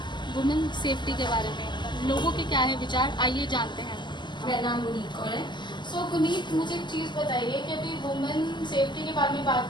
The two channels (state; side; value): late; right; 0.22 ms